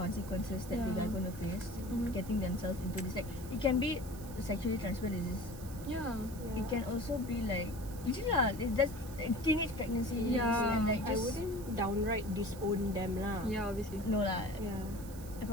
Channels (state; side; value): noise; right; hiss, 17 dB below the sound